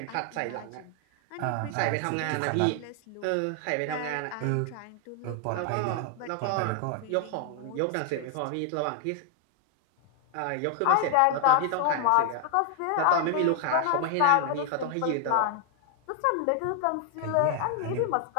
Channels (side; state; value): both; different; correlation 0.00